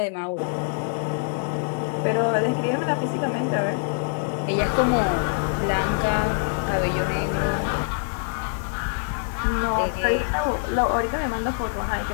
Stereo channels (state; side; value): silent; right; 62 dB below the other